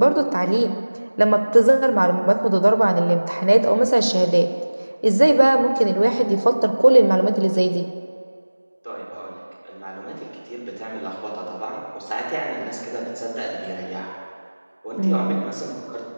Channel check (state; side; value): inverted; both; correlation -1.00